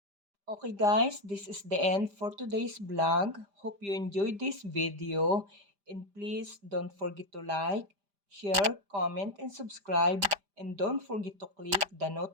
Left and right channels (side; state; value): left; late; 5.0 ms